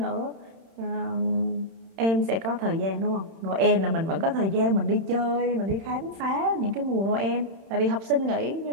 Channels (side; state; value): left; late; 31 ms